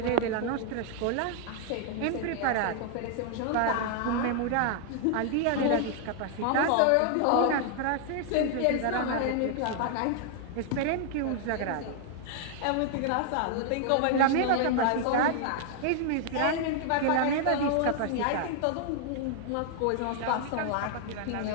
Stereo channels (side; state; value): both; different; correlation 0.00